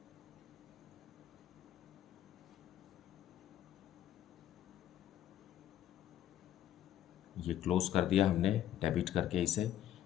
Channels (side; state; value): right; quieter; 11.6 dB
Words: ये क्लोज कर दिया हमने डेबिट करके इसे